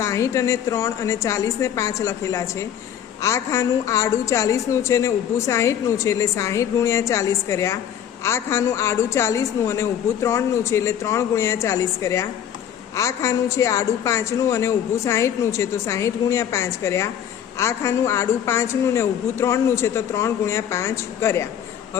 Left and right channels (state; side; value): quieter; right; 9.6 dB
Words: અને 3 અને 40 ને 5 લખેલા છે. આ ખાનું આડું 40નું છે ને ઊભું 60નું છે, એટલે 60 ગુણ્યા 40 કર્યા. આ ખાનું આડું 40નું અને ઊભું 3નું છે, એટલે 3 ગુણ્યા 40 કર્યા. આ ખાનું છે આડું 5નું અને ઊભું 60નું છે, તો 60 ગુણ્યા 5 કર્યા. આ ખાનું આડું 5નું ને ઊભું 3નું છે, તો 3 ગુણ્યા 5 કર્યા.